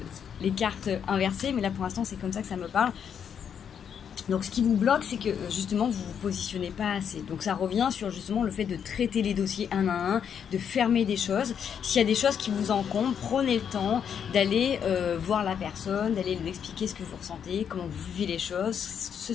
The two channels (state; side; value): quieter; right; 7.9 dB